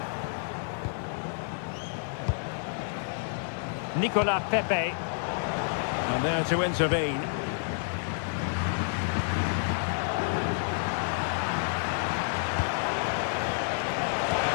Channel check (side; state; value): right; silent; digital silence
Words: Nicolas Pepe. And there to intervene.